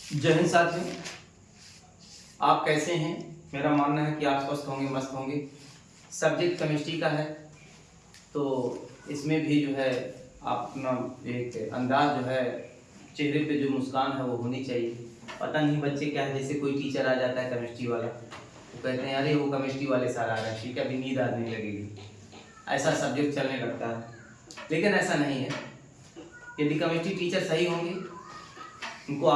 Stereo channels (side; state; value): both; identical; correlation 1.00